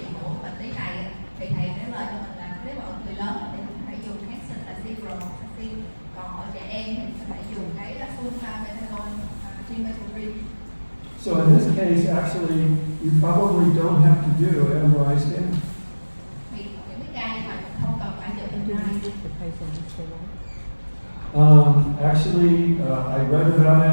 của bệnh lý này thì thầy trả lời cho mình là nếu mà ở người lớn thì mình phải dùng kháng sinh là ciprofloxacin, còn ở trẻ em thì mình phải dùng cái sulfamethoxazole trimethoprim. So in this case, actually, you probably don't have to do MRI scan. Thì những cái ca như vậy mình không cần phải chụp MRI. Actually, I read about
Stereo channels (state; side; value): inverted; both; correlation -1.00